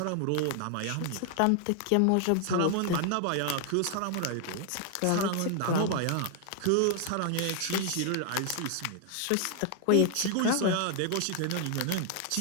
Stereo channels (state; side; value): different; both; correlation 0.00